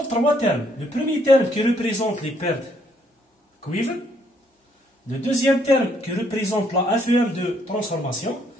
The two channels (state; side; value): normal; both; correlation 0.69